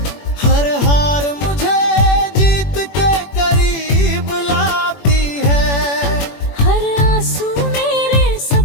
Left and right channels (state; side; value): late; right; 21 ms